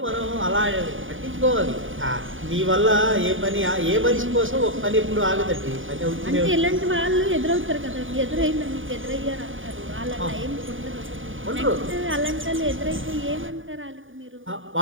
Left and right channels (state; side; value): late; left; 0.57 ms